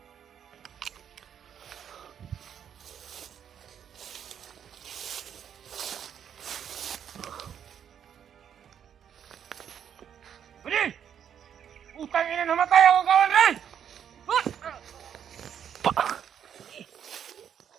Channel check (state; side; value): quieter; left; 8.7 dB